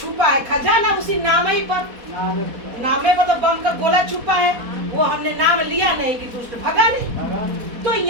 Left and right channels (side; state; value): left; late; 4.1 ms